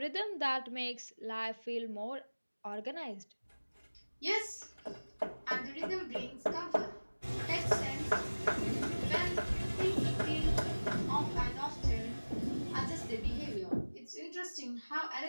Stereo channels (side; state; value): both; inverted; correlation -1.00